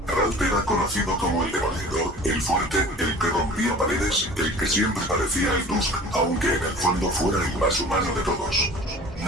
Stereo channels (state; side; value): normal; both; correlation 0.43